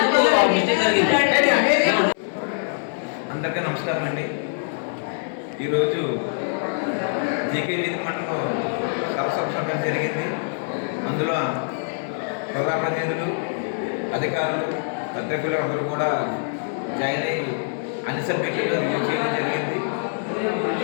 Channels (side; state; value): right; silent; 63 dB below the other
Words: అందరికీ నమస్కారం అండి. ఈరోజు జీకే వీధి మండలంలో సభ జరిగింది. అందులో ప్రజాప్రతినిధులు, అధికారులు, పత్రికలు అందరూ కూడా జాయిన్ అయ్యి అన్ని సబ్జెక్టులను రివ్యూ చేయడం జరిగింది.